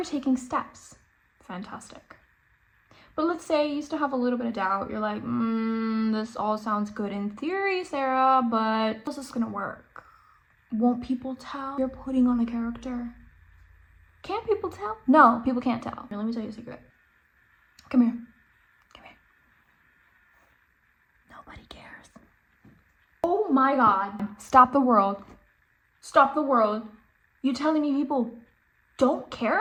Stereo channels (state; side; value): identical; both; correlation 1.00